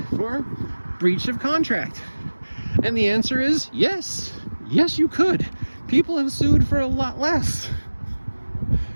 for breach of contract? And the answer is yes. Yes, you could. People have sued for a lot less.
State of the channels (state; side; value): inverted; both; correlation -1.00